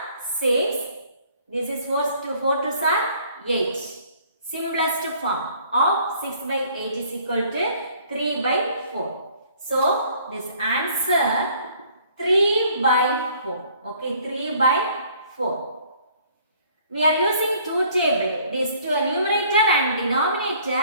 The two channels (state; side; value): inverted; both; correlation -0.58